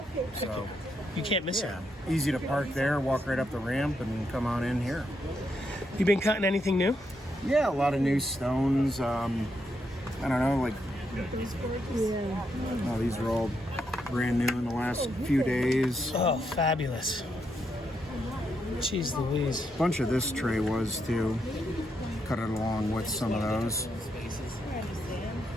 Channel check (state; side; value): normal; both; correlation 0.80